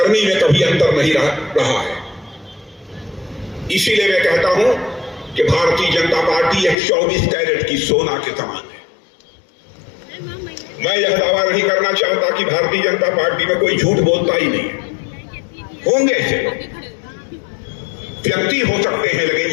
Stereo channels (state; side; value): drops out; right; at 6.8 s